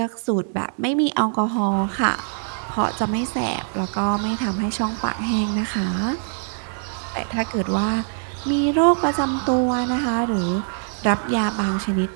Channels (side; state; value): left; silent; 64 dB below the other